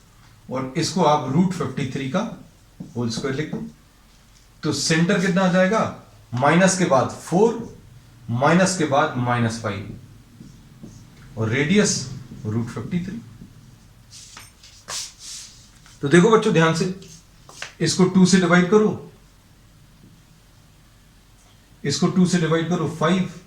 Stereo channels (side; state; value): both; identical; correlation 1.00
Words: और इसको आप रूट 53 का होल स्क्वायर लिख दो। तो सेंटर कितना आ जाएगा? माइनस के बाद 4, माइनस के बाद माइनस 5 और रेडियस रूट 53। तो देखो बच्चों ध्यान से, इसको 2 से डिवाइड करो, इसको 2 से डिवाइड करो 5